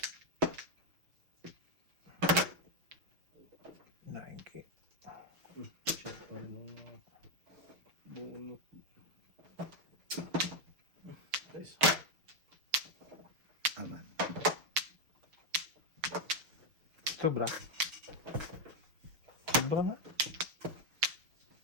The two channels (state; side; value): late; left; 6.6 ms